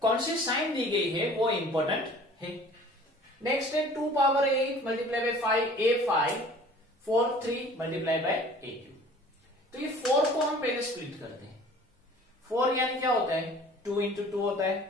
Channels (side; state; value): both; normal; correlation 0.48